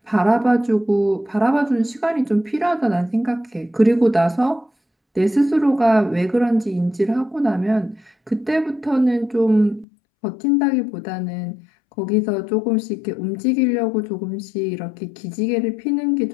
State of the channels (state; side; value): drops out; right; at 9.9 s